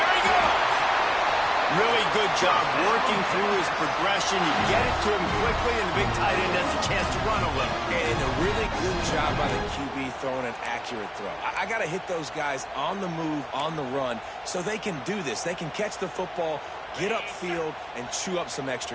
he goes. Really good job working through his progression. You get it to him quickly, and the big tight end has a chance to run a little. And a really good job by the QB throwing an accurate throw. I got to hit those guys on the move, on the run, so they can do this. They can catch the football, get upfield, and chew up some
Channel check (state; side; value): identical; both; correlation 1.00